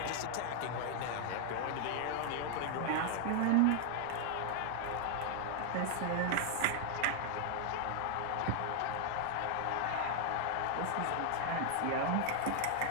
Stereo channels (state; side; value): different; both; correlation 0.00